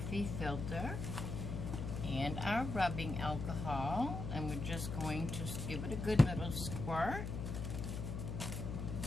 filter and our rubbing alcohol, and we're just going to give it a good little squirt.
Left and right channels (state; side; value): noise; left; hum, 4 dB below the sound